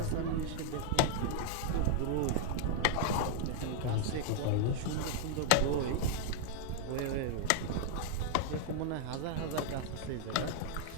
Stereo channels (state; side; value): different; both; correlation 0.00